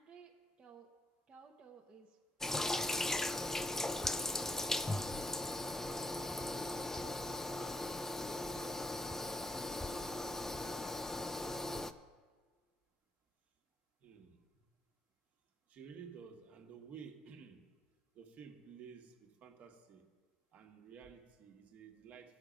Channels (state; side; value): normal; both; correlation 0.76